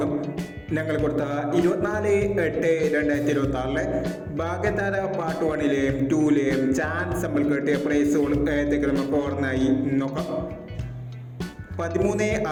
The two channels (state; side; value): identical; both; correlation 1.00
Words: ഞങ്ങൾ കൊടുത്ത 24/8/2026 ഭാഗ്യതാര പാർട്ട് 1-ലെയും 2-ലെയും ചാൻസ് നമ്മൾ കിട്ടിയ പ്രൈസുകൾ ഏതൊക്കെ നമുക്ക് ഓർമ്മയായി നോക്കാം.